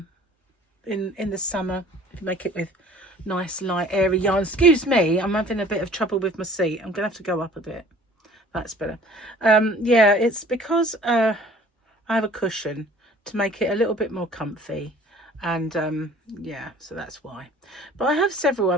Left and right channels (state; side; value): normal; both; correlation 0.50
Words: the summer, if you make it with nice light airy yarn. Excuse me, I'm having a bit of trouble with my seat. I'm gonna have to go up a bit. That's better. Yeah, it's because I have a cushion to make it a little bit more comfy, and yeah, so that's why. But I have several